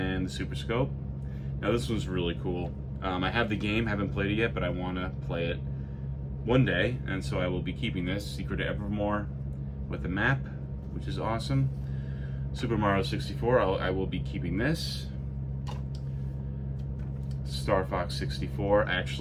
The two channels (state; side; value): identical; both; correlation 1.00